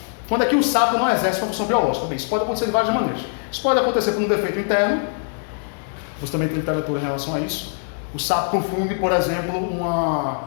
Quando é que o sapo não exerce uma função biológica? Bem, isso pode acontecer de várias maneiras. Isso pode acontecer por um defeito interno, você também tem literatura em relação a isso. O sapo confunde, por exemplo,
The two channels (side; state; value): right; silent; 63 dB below the other